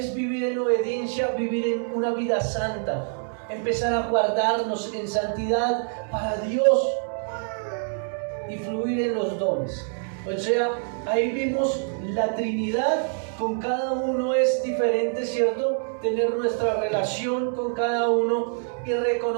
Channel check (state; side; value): silent; left; 61 dB below the other